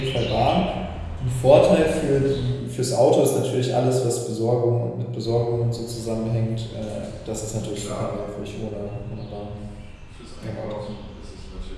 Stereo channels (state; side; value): identical; both; correlation 1.00